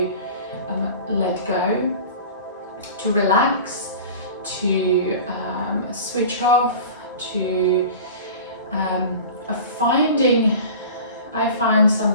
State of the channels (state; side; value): inverted; both; correlation -0.38